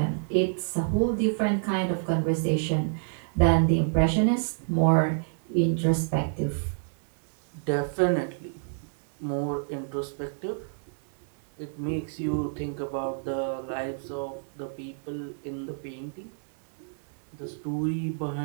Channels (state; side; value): silent; left; 59 dB below the other